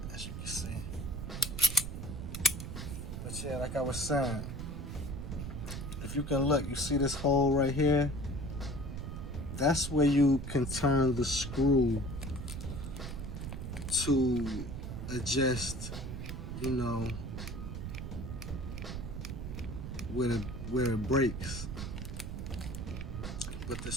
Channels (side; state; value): right; noise; rumble, 6 dB below the sound